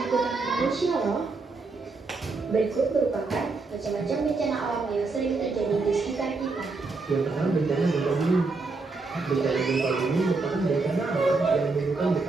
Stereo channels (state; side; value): quieter; left; 3.9 dB